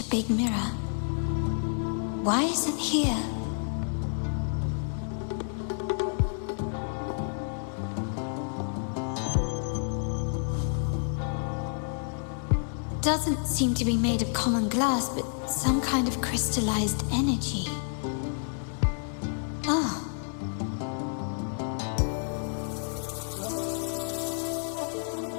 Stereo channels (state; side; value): silent; right; 58 dB below the other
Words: big mirror. Why is it here? Doesn't seem to be made of common glass, but some kind of crystallized energy. Oh.